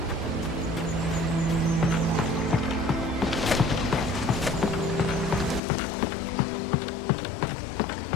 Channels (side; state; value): right; drops out; at 5.6 s